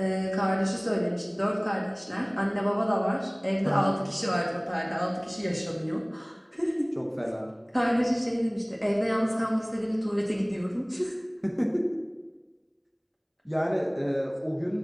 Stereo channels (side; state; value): both; identical; correlation 1.00